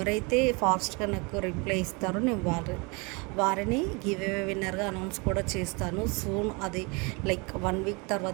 ఫాస్ట్గా నాకు రిప్లై ఇస్తారో నేను వారిని గివ్ అవే విన్నర్గా అనౌన్స్ కూడా చేస్తాను సూన్. అది లైక్ 1 వీక్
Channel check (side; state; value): left; quieter; 29.5 dB